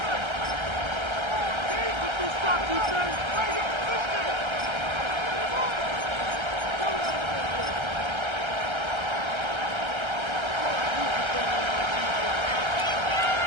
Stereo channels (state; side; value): late; left; 1.3 ms